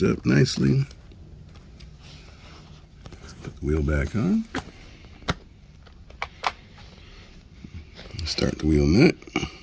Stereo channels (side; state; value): both; identical; correlation 1.00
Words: up nicely. Put the wheel back on. Start the wheel nut.